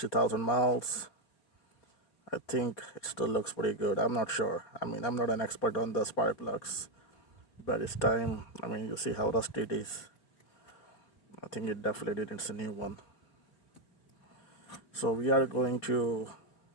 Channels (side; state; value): right; late; 4.7 ms